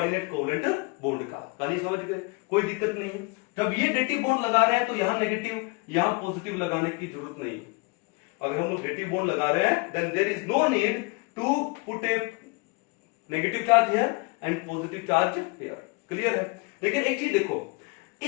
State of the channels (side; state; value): right; quieter; 28.3 dB